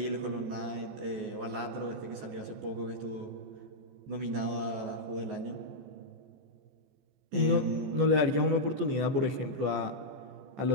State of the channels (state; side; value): late; left; 14 ms